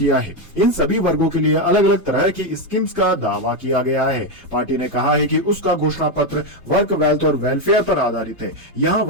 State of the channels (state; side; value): late; right; 1.0 ms